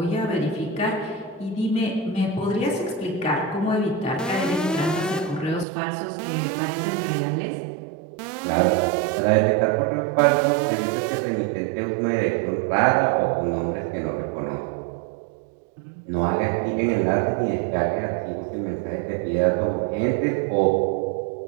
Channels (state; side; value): drops out; left; at 5.7 s